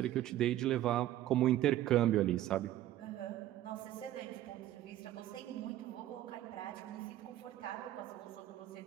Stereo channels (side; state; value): left; quieter; 13.5 dB